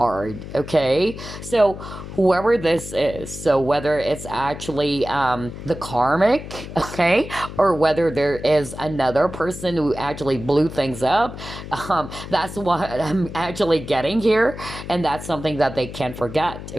Okay, so whoever this is, so whether it's actually the karmic, okay, or whether there is another person who actually blew things up, that's what I'm actually getting here, and that's something that they can't forget.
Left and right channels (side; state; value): left; noise; hum, 11 dB below the sound